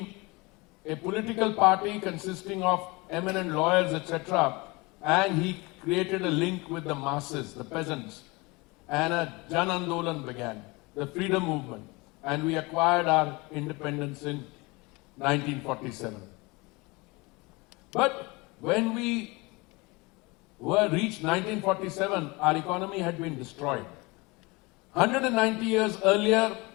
a political party consisting of eminent lawyers, etc., and he created a link with the masses, the peasants, and a Jan Andolan began, the freedom movement, and we acquired our independence in 1947. But when we reached 1947, our economy had been destroyed. 190 years earlier,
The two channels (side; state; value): right; quieter; 25.1 dB